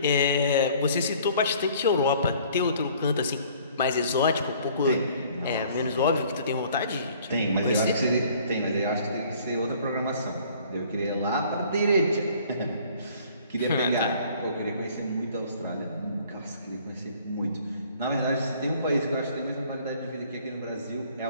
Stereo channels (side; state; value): both; inverted; correlation -0.55